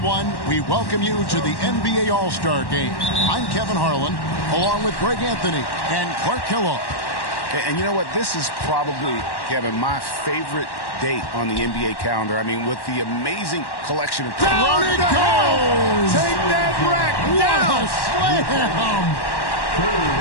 We welcome you to the NBA All-Star Game. I'm Kevin Harlan, along with Greg Anthony and Clark Kellogg. And you know what? This is probably, Kevin, my favorite date on the NBA calendar. I mean, with the amazing collection of... Down it goes! Take that rack down! Slam!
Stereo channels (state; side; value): late; right; 1.1 ms